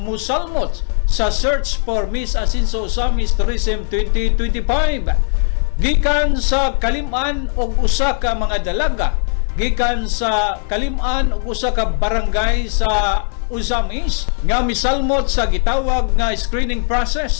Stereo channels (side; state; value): right; silent; 55 dB below the other